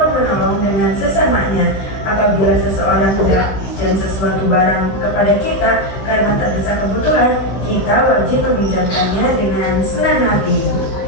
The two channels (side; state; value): right; late; 15 ms